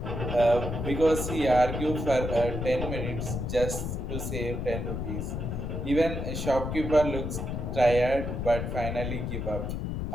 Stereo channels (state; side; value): noise; left; rumble, 3 dB below the sound